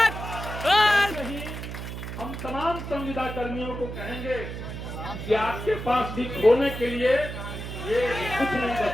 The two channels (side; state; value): right; noise; hum, 7 dB below the sound